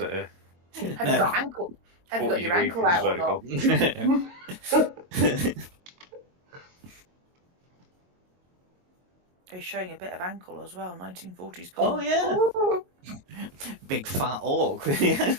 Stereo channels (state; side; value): late; left; 22 ms